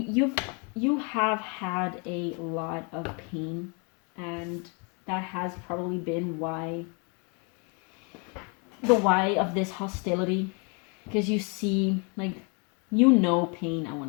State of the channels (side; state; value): right; quieter; 34.4 dB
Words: have had a lot of pain, and that has probably been the why of this hostility, because you see, like, you know pain, I